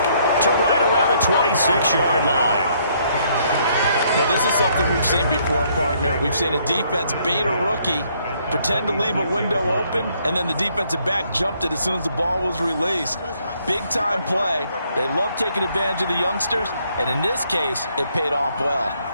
to right around the 26-yard line. Now, this is something we've seen before, partner. We've seen a defense bait a rookie, pretend to leave a window open, and then the defensive back jumped it as soon as the ball was released. Big-time play. They love taking advantage of the youngsters, and in this case, it paid off well.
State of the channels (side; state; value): both; inverted; correlation -0.68